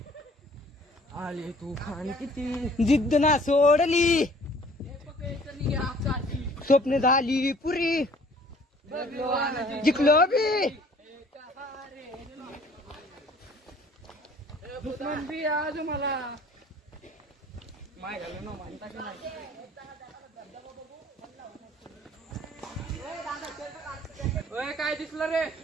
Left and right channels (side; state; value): both; normal; correlation 0.54